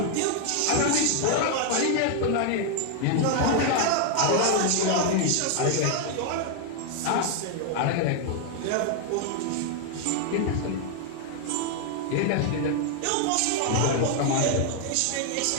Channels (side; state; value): both; different; correlation 0.00